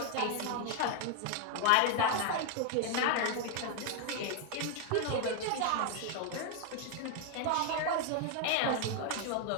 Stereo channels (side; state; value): both; different; correlation 0.00